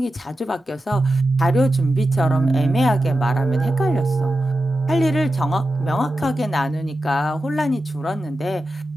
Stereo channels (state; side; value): normal; both; correlation 0.91